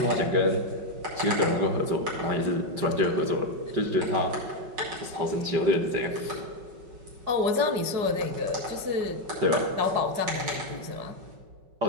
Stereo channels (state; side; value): late; left; 5.3 ms